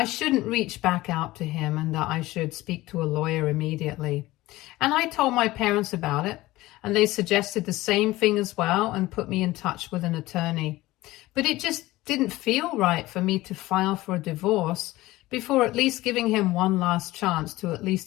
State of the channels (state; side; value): quieter; right; 18.1 dB